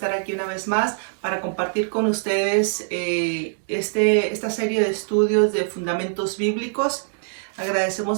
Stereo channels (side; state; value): left; silent; digital silence